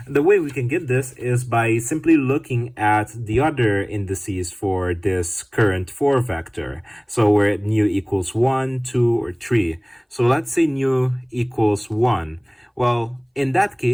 the way we can get this is by simply looking at the other indices for this current 4 vector. So where nu equals 1, 2, or 3. So let's say nu equals 1. Well, in that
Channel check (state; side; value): identical; both; correlation 1.00